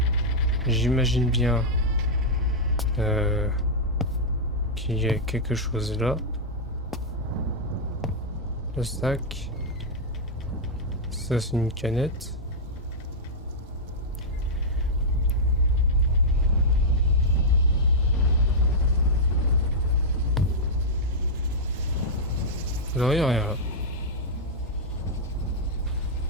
J'imagine bien qu'il y a quelque chose là. Le sac. Ça c'est une canette. Vous voyez rien là.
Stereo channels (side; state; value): both; normal; correlation -0.06